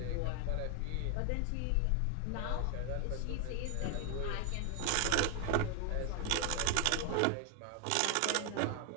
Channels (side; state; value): both; different; correlation 0.01